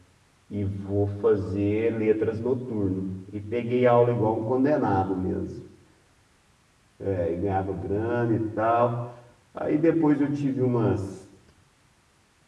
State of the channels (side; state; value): both; identical; correlation 1.00